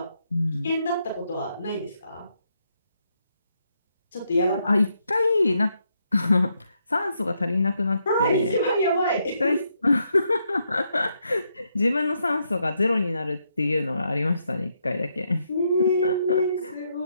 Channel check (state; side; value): inverted; both; correlation -0.78